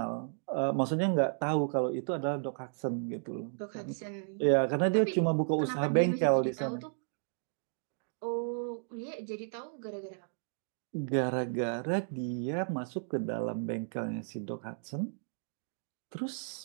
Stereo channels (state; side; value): silent; left; digital silence